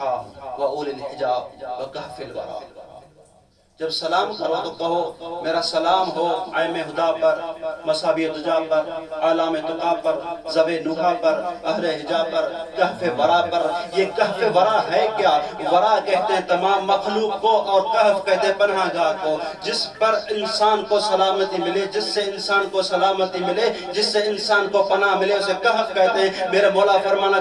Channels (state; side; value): identical; both; correlation 1.00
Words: واولی الحجاب وکہف الورا. جب سلام کرو تو کہو میرا سلام ہو ائمہ ہدا پر، مصابیح الدجا پر، علام تقا پر، ذوی نحا پر، اہل حجاب پر، کہف ورا پر. یہ کہف ورا ہے کیا؟ ورا کہتے ہیں تمام مخلوق کو، اور کہف کہتے ہیں پناہ گاہ کو. جس پر انسان کو سلامتی ملے، جس سے انسان کو سلامتی ملے، جس سے انسان کو پناہ ملے، اسے کہف کہتے ہیں. میرے مولا فرمانا